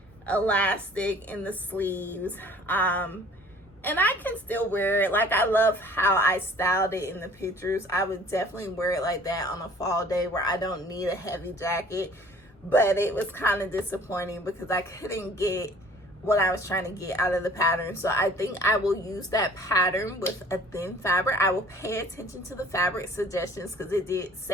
elastic in the sleeves, and I can still wear it. Like, I love how I styled it in the pictures. I would definitely wear it like that on a fall day where I don't need a heavy jacket, but it was kind of disappointing because I couldn't get what I was trying to get out of the pattern. So I think I will use that pattern with a thin fabric. I will pay attention to the fabric suggestions, because it did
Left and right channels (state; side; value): normal; both; correlation 0.51